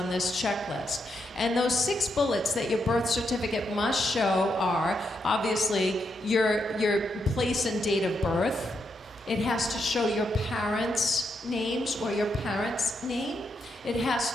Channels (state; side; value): normal; both; correlation 0.81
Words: this checklist. And those 6 bullets that your birth certificate must show are, obviously, your place and date of birth. It has to show your parents' names or your parents' name. It has